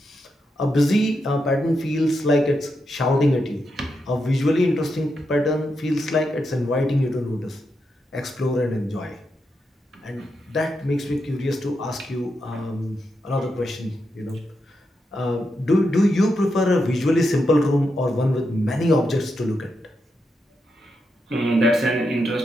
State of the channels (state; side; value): normal; both; correlation 0.85